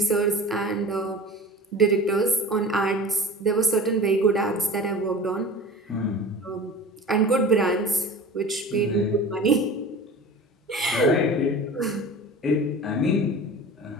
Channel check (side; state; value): both; normal; correlation 0.40